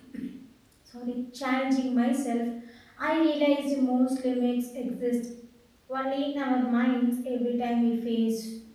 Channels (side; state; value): both; identical; correlation 1.00